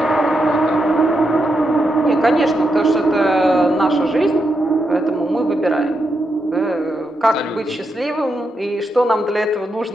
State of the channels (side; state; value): both; normal; correlation 0.84